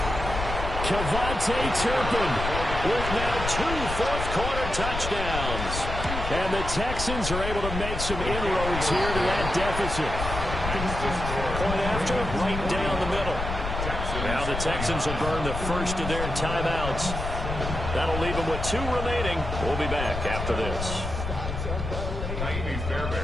Kevontae Turpin With now 2 fourth-quarter touchdowns. And the Texans are able to make some inroads here to that deficit. Point after, right down the middle. Now the Texans will burn the first of their timeouts. That'll leave them with 2 remaining. We'll be back after this.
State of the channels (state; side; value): noise; left; rumble, 5 dB below the sound